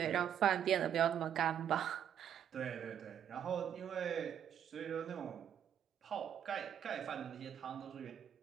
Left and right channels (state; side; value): quieter; left; 9.3 dB